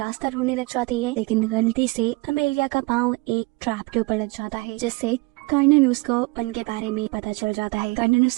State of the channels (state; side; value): quieter; left; 24.9 dB